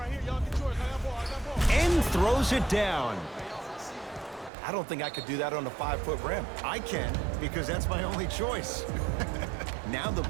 here, y'all get yours. I got ball, I got ball. And throws it down. I don't think I could do that on a 5-foot rim. I can, because that's my only choice. Now the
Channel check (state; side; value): drops out; left; at 4.5 s